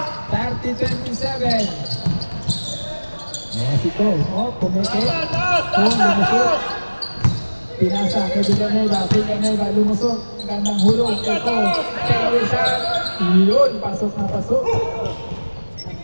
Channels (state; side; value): inverted; both; correlation -1.00